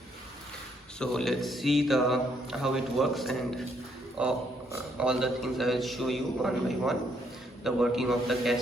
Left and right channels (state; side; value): normal; both; correlation 0.71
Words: So let's see how it works, and all the things I will show you one by one. The working of the